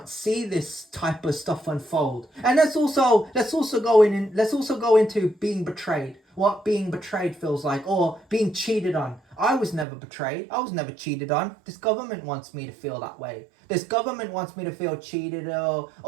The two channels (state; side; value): drops out; left; at 9.9 s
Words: see this type of stuff unfold. And let's also go into being betrayed. What being betrayed feels like, or being cheated on. I was never betrayed. I was never cheated on. This government wants me to feel that way. This government wants me to feel cheated